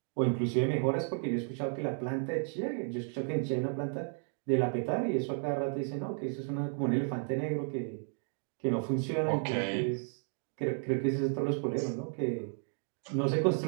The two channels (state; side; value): silent; left; 56 dB below the other